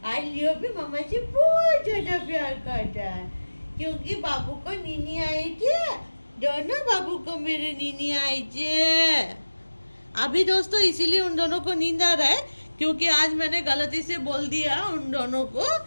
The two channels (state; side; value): inverted; both; correlation -1.00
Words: आज लियो भी मामा से बहुत ज्यादा प्यार करता है क्योंकि बाबू को नीनी आई थी दोनों बाबू को मेरे नीनी आई थी अभी दोस्तों इसीलिए उन दोनों को नींद आ रहा है क्योंकि आज मैंने गलती से बोल दिया उन दोनों को